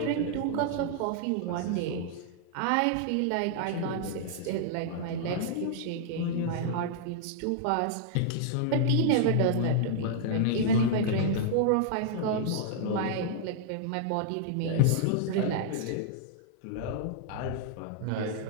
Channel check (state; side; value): different; both; correlation -0.01